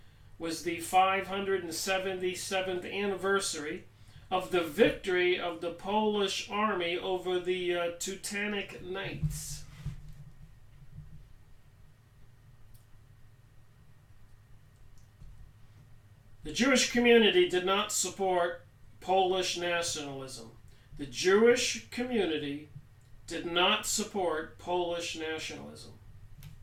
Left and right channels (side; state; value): both; identical; correlation 1.00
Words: was the 577th anniversary of the victory of the Polish army over the Teutonic Knights. The Jewish community did not support Polish nationalism. The Jewish community did not support Polish nationalism.